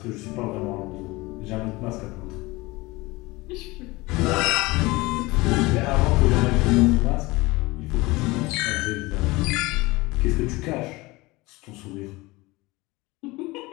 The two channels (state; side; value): quieter; right; 22.0 dB